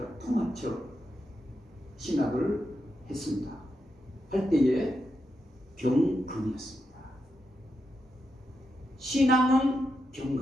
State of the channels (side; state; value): both; normal; correlation 0.85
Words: 통합적 신학을 했습니다. 할 때에 경건이었습니다. 신앙은